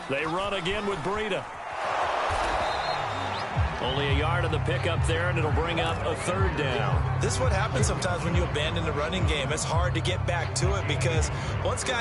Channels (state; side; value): identical; both; correlation 1.00